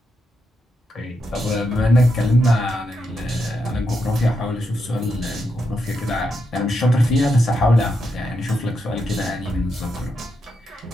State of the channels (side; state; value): both; normal; correlation 0.83